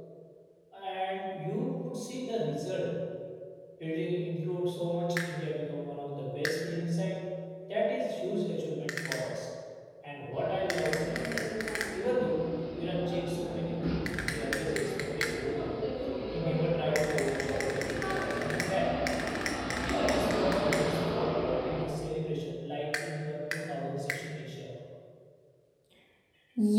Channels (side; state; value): both; identical; correlation 1.00